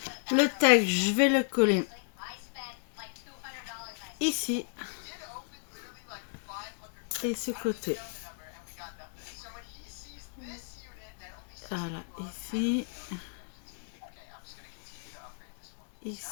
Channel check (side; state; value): right; silent; digital silence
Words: le tag, je vais le coller ici et ce côté. Voilà, ici.